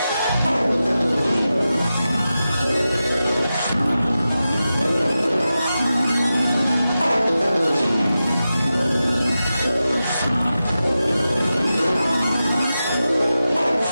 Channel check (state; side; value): inverted; both; correlation -0.92